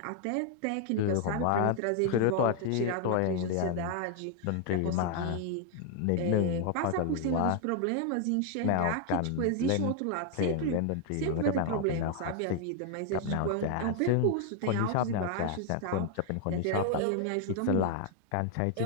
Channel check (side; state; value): both; different; correlation 0.00